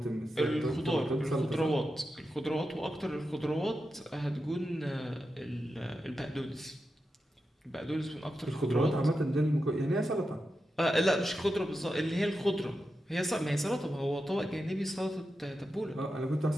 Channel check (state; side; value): normal; both; correlation 0.89